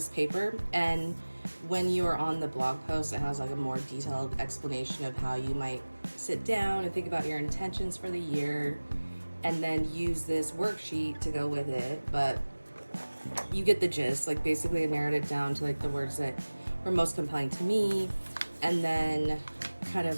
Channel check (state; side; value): inverted; both; correlation -1.00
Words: paper, and when you're on the blog post, it has like a more detailed explanation of how you might sit down and think about your intentions for the year and then use this worksheet to go with it. But you get the gist. Like basically I narrowed it down to like the words that were most compelling to me, and then kind